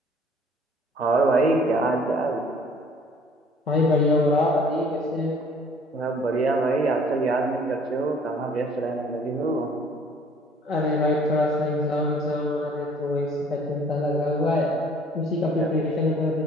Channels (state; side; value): normal; both; correlation 0.55